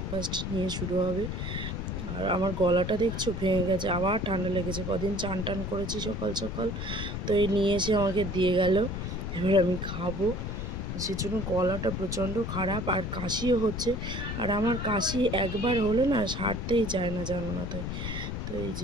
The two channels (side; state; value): left; noise; rumble, 4 dB below the sound